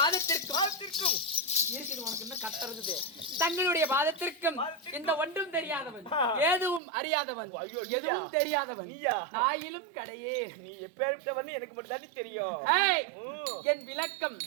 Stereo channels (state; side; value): drops out; left; at 6.8 s